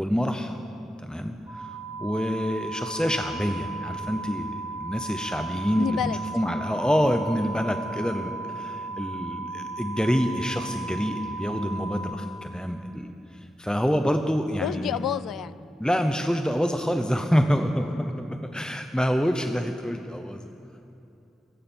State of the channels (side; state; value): both; normal; correlation 0.89